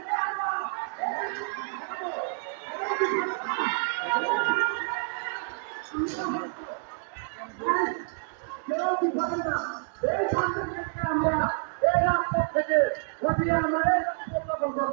আমরা এই রাজপথ থেকে ঘটিয়ে আমরা এই উত্থাপন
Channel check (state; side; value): silent; left; digital silence